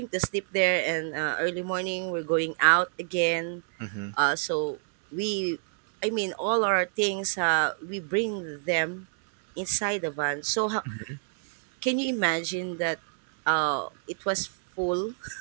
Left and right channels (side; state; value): left; silent; digital silence